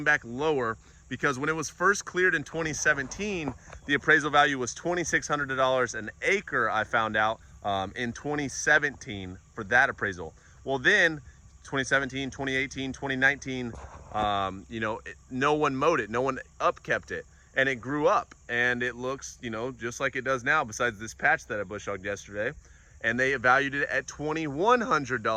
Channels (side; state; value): both; identical; correlation 1.00